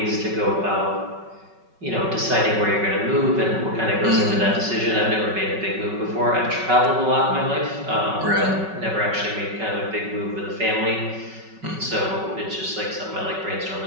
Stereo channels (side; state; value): left; late; 5.3 ms